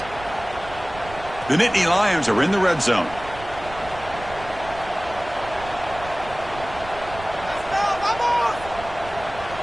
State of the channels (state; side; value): noise; right; rumble, 15 dB below the sound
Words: The Nittany Lions are in the red zone.